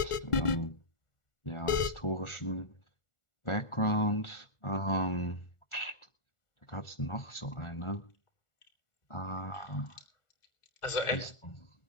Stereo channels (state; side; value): late; right; 1.4 ms